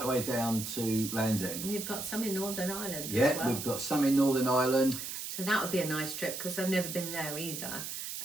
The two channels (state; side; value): noise; right; hiss, 6 dB below the sound